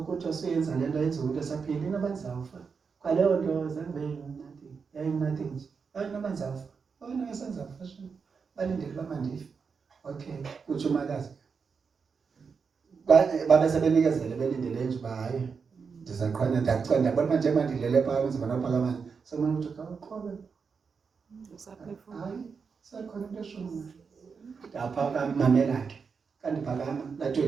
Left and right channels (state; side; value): quieter; left; 5.6 dB